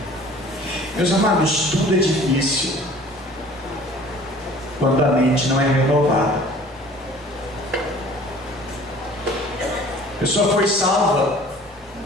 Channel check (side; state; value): right; noise; hum, 25 dB below the sound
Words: Meus amados, tudo é difícil quando a mente não é renovada. A pessoa foi salva,